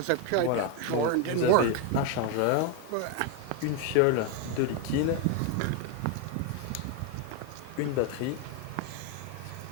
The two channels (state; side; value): different; both; correlation 0.01